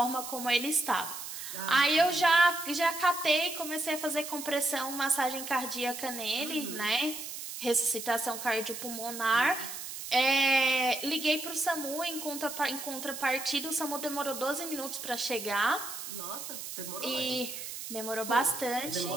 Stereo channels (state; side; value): noise; right; hiss, 8 dB below the sound